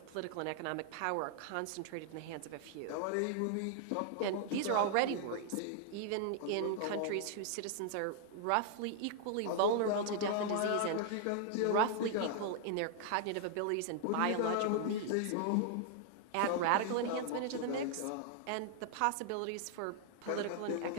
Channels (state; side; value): different; both; correlation 0.00